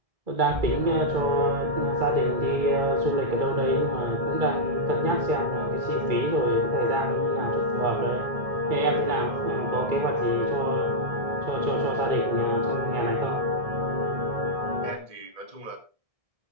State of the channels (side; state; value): left; late; 1.6 ms